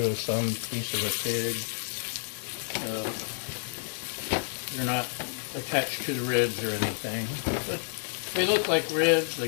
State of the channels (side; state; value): right; silent; digital silence